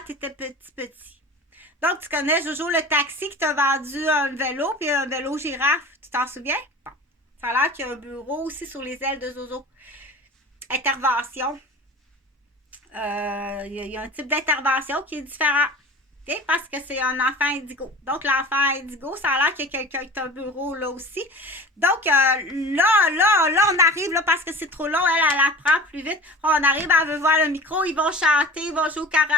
tu étais petit. Donc, tu connais Jojo le taxi qui t'a vendu un vélo, puis un vélo girafe. Tu t'en souviens? Bon. Ça a l'air qu'il y a un bureau aussi sur les ailes de Jojo. Intervention. Il y a un type d'intervention qui est différent. Okay? Parce que c'est un enfant indigo. Donc, l'enfant indigo, ça a l'air qu'il y a quelqu'un qui a un bureau là aussi. Donc, là, on arrive, là, parce que c'est trop long, elle apprend plus vite. On arrive, elle veut voir le micro, ils vont chanter, ils vont jouer au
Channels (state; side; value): normal; both; correlation 0.37